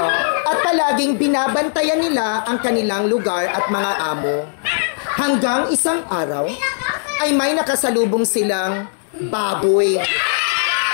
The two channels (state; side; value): silent; right; digital silence